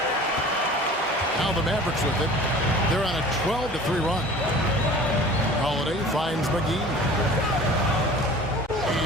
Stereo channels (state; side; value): normal; both; correlation 0.43